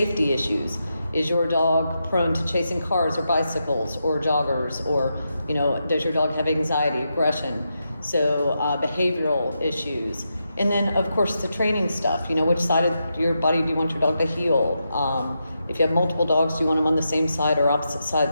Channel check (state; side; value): inverted; both; correlation -0.86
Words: issues. Is your dog prone to chasing cars or bicycles or joggers? Or, you know, does your dog have anxiety, aggression? So behavioral issues. And then, of course, the training stuff. You know, which side of your body do you want your dog to heel? If you have multiple dogs, do you want them on the same side or opposite